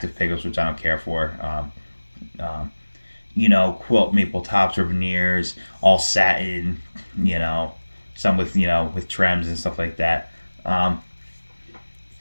pickups, which I don't care for. Quilt maple tops or veneers, all satin, some with trims and stuff like that.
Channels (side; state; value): both; inverted; correlation -1.00